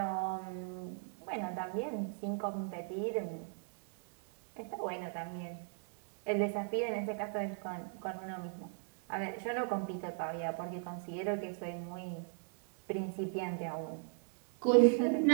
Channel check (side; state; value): left; silent; 53 dB below the other